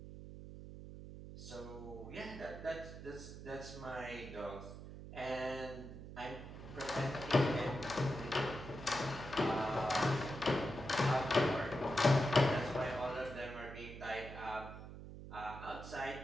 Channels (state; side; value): noise; right; hum, 12 dB below the sound